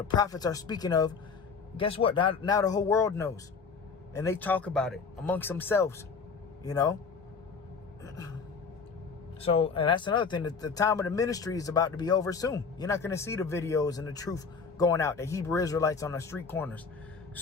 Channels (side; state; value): right; quieter; 5.2 dB